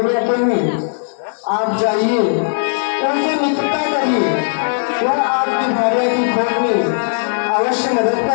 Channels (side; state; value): right; silent; digital silence